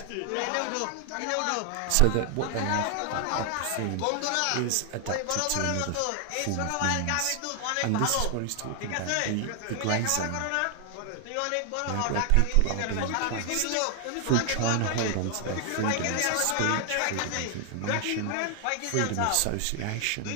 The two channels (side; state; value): both; different; correlation 0.00